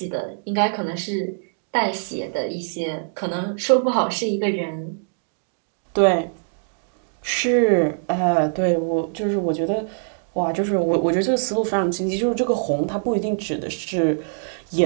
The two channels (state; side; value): silent; left; digital silence